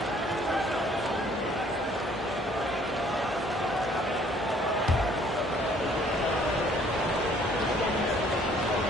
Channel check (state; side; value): normal; both; correlation 0.59